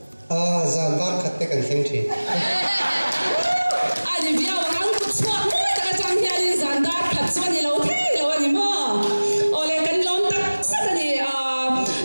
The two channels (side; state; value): both; inverted; correlation -1.00